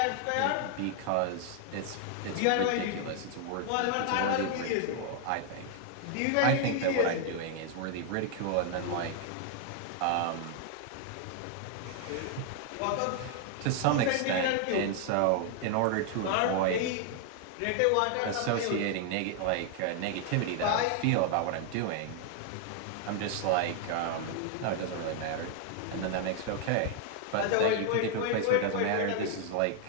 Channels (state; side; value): different; both; correlation 0.00